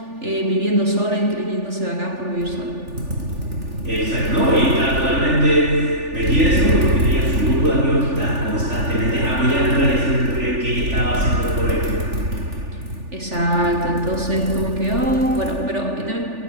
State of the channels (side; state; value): left; late; 3.4 ms